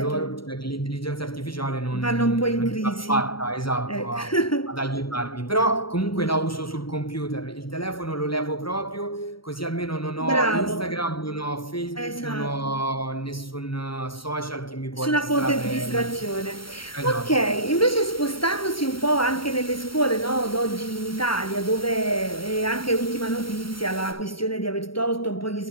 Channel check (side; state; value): right; late; 0.74 ms